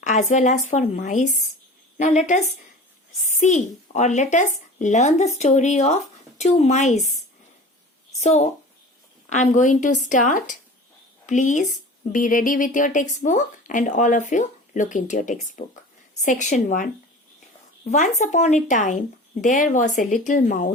as well as for mice? Now, let us see or let us learn the story of two mice. So, I'm going to start. Please be ready with your textbook and all of you look into your textbook. Section 1. Once upon a time, there was a little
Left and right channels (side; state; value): both; normal; correlation 0.38